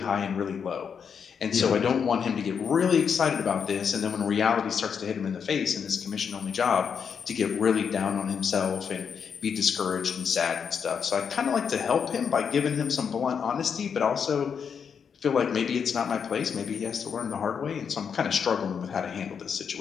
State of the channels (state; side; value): quieter; right; 6.8 dB